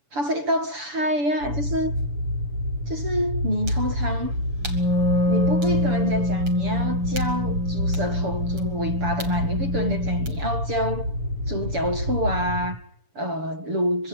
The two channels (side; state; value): left; late; 7.0 ms